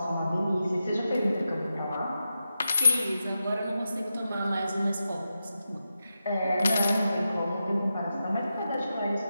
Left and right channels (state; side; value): inverted; both; correlation -0.89